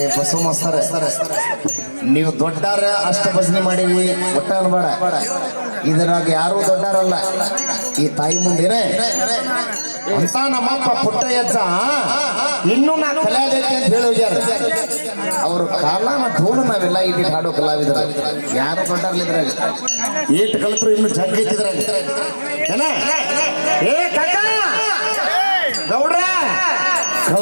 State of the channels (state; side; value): inverted; both; correlation -1.00